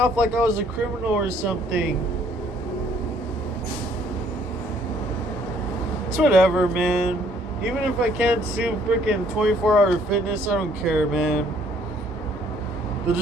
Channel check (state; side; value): normal; both; correlation 0.62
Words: like I was a criminal or something. It's whatever, man. Even if I can't sue freaking 24-hour fitness, I don't care, man. They'll